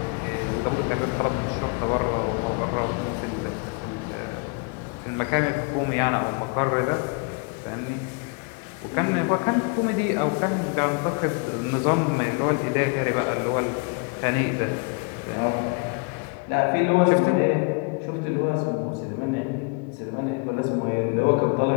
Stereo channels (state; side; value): quieter; right; 33.1 dB